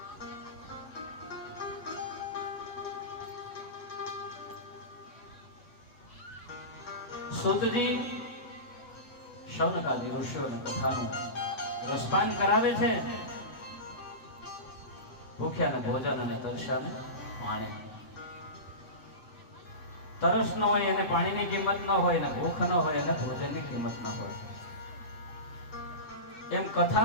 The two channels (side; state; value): right; late; 8.3 ms